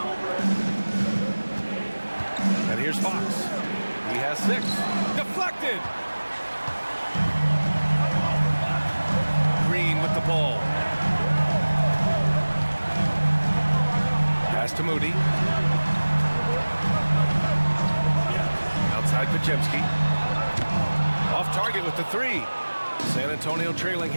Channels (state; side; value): inverted; both; correlation -1.00